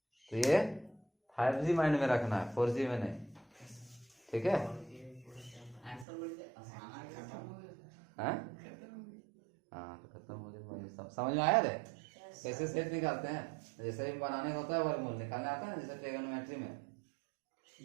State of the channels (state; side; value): drops out; left; at 6.1 s